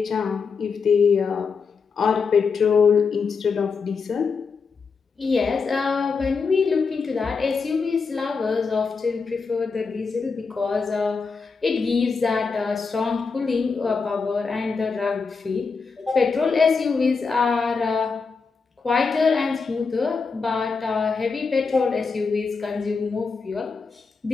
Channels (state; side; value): quieter; right; 5.0 dB